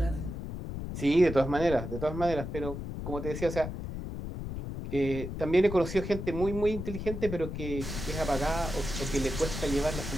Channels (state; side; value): noise; left; rumble, 6 dB below the sound